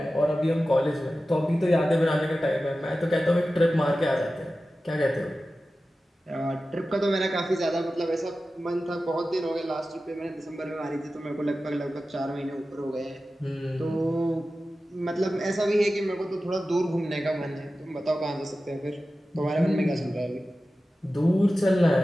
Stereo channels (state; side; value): normal; both; correlation 0.94